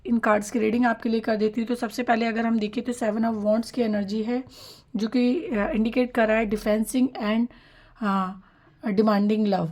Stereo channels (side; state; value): both; identical; correlation 1.00